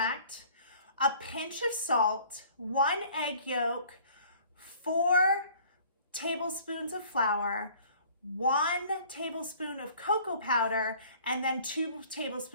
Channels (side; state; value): both; inverted; correlation -0.52